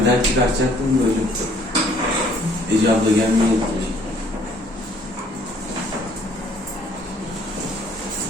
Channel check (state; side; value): normal; both; correlation 0.60